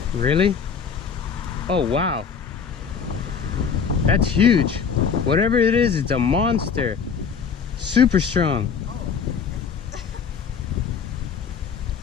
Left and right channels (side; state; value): right; quieter; 6.4 dB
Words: Really? Oh, wow. That's huge. Whatever it is, it's a monster. Super strong.